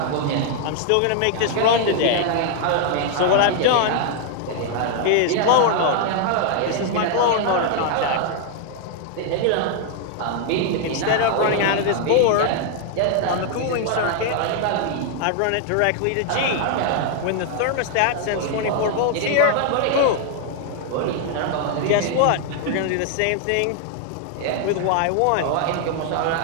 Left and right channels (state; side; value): different; both; correlation 0.00